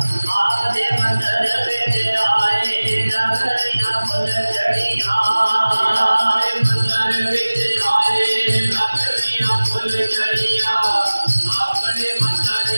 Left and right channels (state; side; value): inverted; both; correlation -1.00